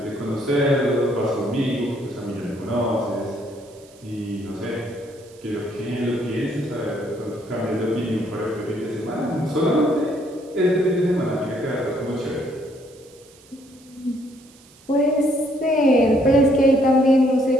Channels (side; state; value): right; noise; hiss, 26 dB below the sound